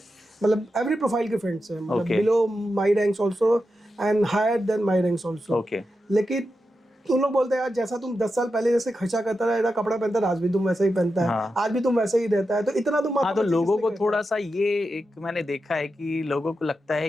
मतलब एवरी प्रोफाइल के फ्रेंड्स हैं, मतलब below my ranks also and higher than my ranks also, लेकिन तुम लोग बोलते हैं यार जैसा तुम 10 साल पहले जैसे खर्चा करता रहा, कपड़ा पहनता रहा, आज भी तुम वैसा ही पहनता है, आज भी तुम वैसे ही रहता है, तो इतना तुम तो लोगों को थोड़ा सा ये एक मैंने देखा है कि लोगों को लगता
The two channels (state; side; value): normal; both; correlation 0.89